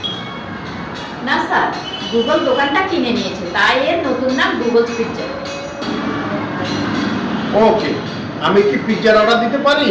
না স্যার, গুগল দোকানটা কিনে নিয়েছে, তাই এর নতুন নাম গুগলস পিৎজা। ওকে, আমি কি পিৎজার অর্ডার দিতে পারি?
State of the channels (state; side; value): identical; both; correlation 1.00